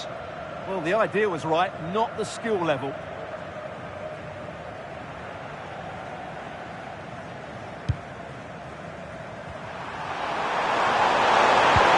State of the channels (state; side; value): identical; both; correlation 1.00